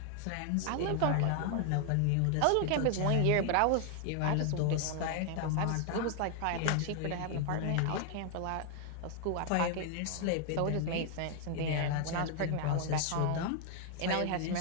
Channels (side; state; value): both; different; correlation 0.00